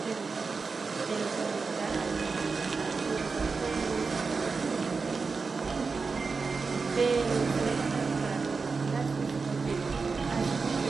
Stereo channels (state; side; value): quieter; left; 4.6 dB